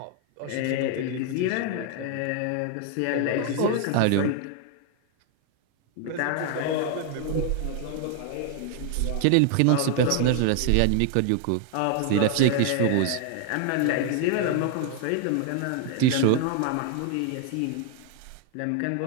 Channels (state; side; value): different; both; correlation 0.00